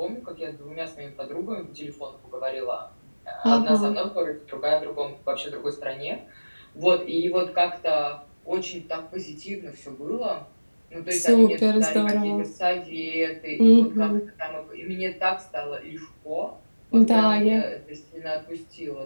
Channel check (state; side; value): inverted; both; correlation -1.00